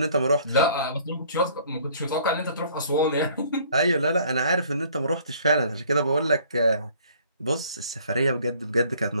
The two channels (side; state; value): both; inverted; correlation -0.57